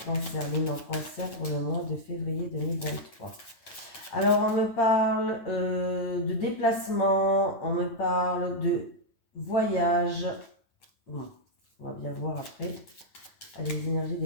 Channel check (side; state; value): right; late; 9.1 ms